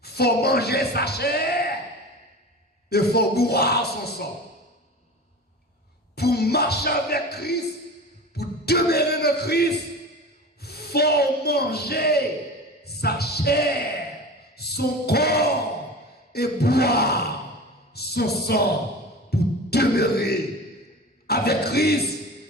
faut manger sa chair et il faut boire son sang. Pour marcher avec Christ, pour demeurer dans Christ, il faut manger sa chair, son corps et boire son sang pour demeurer avec Christ.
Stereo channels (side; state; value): both; normal; correlation 0.33